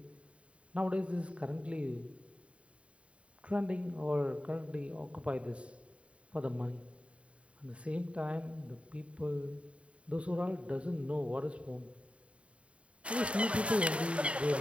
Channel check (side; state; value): left; late; 0.062 ms